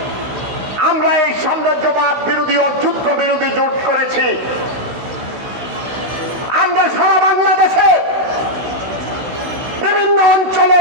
আমরা এই সাম্রাজ্যবাদ বিরোধী ও যুদ্ধ বিরোধী জোট করেছি। আমরা সারা বাংলাদেশে বিভিন্ন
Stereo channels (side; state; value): left; late; 16 ms